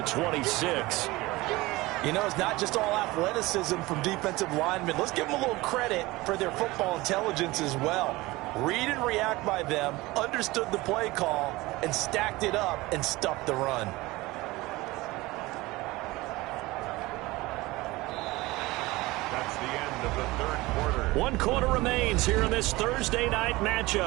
26. You know, it's not just all athleticism from defensive linemen. Let's give them a little credit for their football intelligence as well. Read and react by them, understood the play call, and stacked it up and stuffed the run. That's the end of the third quarter. 1 quarter remains here in this Thursday night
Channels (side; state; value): left; quieter; 20.4 dB